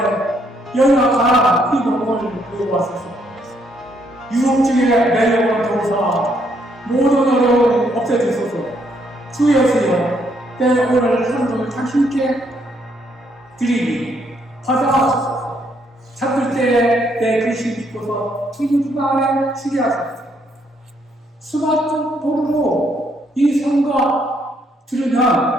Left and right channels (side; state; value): both; normal; correlation 0.72